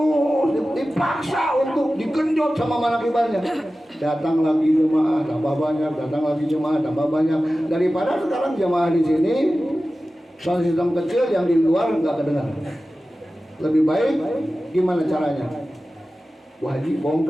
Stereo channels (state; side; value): normal; both; correlation 0.95